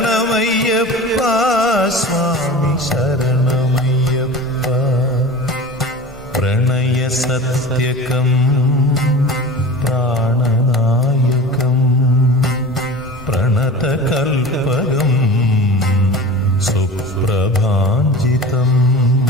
स्वामी शरणमय्यप्पा प्रणयसत्यकं प्राणनायकं प्रणतकल्पकं सुप्रभाञ्जितं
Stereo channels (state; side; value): normal; both; correlation 0.35